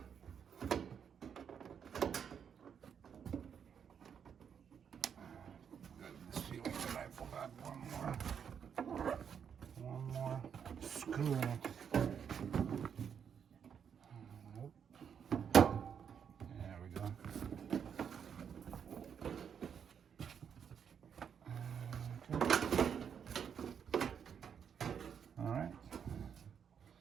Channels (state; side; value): quieter; left; 7.6 dB